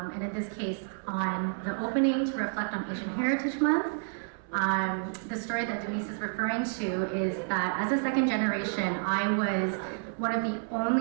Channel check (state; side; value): silent; left; 58 dB below the other